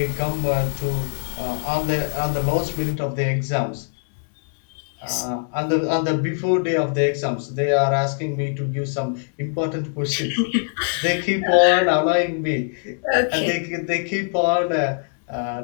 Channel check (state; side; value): silent; right; 64 dB below the other